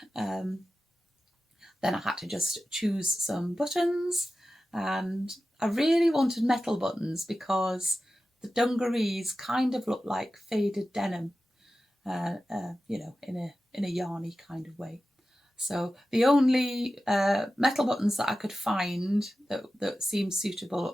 Then I had to just choose some buttons, and I really wanted metal buttons because the dungarees kind of look like faded denim, in a yarny kind of way. So the only metal buttons that I could find that seemed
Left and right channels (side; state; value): both; normal; correlation 0.94